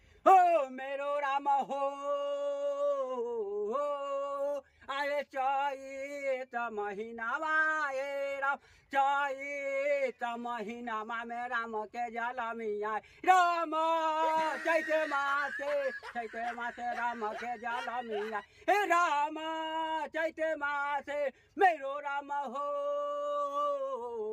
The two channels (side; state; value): both; identical; correlation 1.00